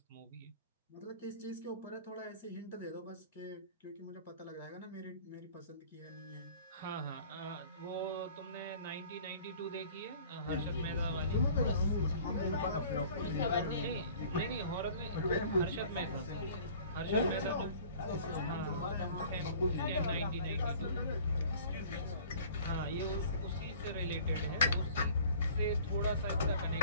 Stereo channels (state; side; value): inverted; both; correlation -0.49